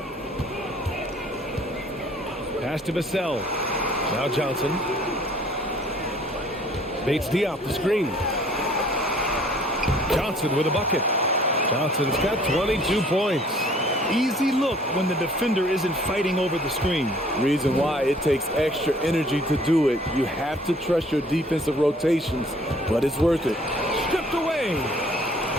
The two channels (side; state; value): both; normal; correlation 0.56